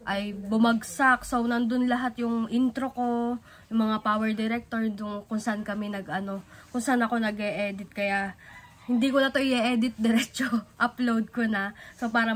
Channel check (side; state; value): both; identical; correlation 1.00